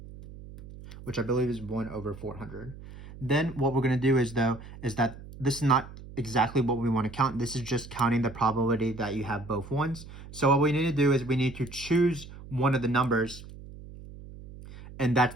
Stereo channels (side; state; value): right; noise; hum, 16 dB below the sound